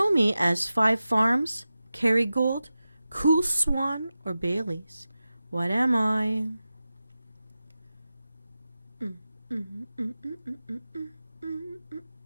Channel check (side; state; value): both; inverted; correlation -0.94